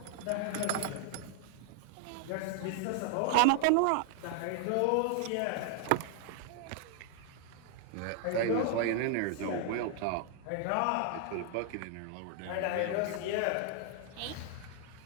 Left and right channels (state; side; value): different; both; correlation 0.00